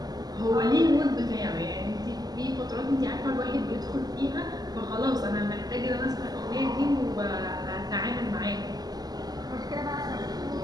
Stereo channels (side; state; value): left; late; 0.19 ms